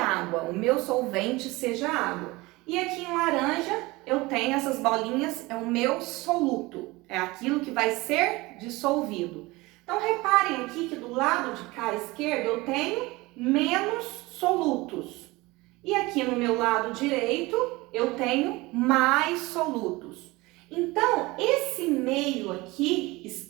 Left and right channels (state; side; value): quieter; left; 21.8 dB